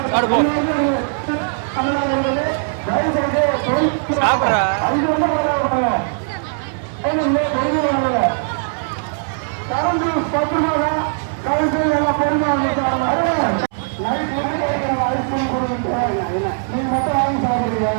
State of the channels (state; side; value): silent; left; 66 dB below the other